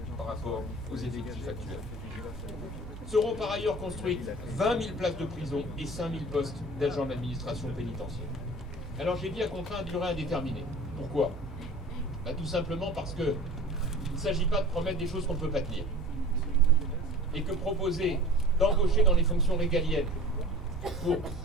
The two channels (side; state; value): both; normal; correlation 0.41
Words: par rapport aux effectifs actuels. Seront par ailleurs construites 20 000 places de prison et 5 000 postes d'agents de l'administration pénitentiaire. Alors j'ai dit à contrat à durée indéterminée. Pourquoi? Tout simplement parce que il ne s'agit pas de promettre des choses qu'on ne peut pas tenir. Et que proposer d'embaucher dans les fonctions régaliennes pour